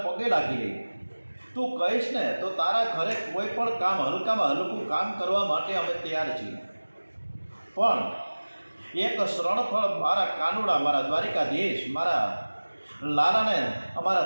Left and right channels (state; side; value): inverted; both; correlation -1.00